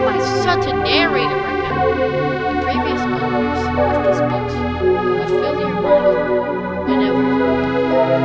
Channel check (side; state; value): both; identical; correlation 1.00